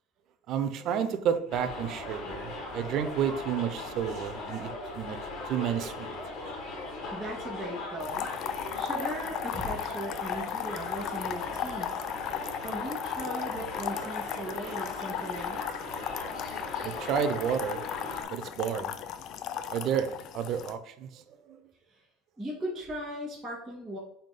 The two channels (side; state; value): both; normal; correlation 0.39